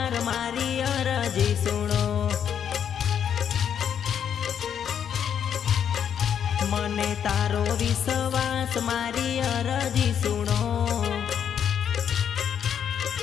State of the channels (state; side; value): quieter; right; 8.5 dB